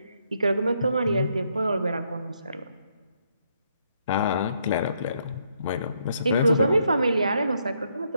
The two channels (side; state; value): both; inverted; correlation -0.74